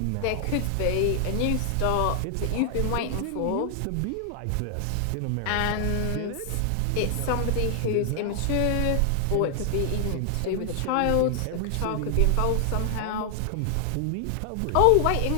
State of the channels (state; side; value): different; both; correlation 0.00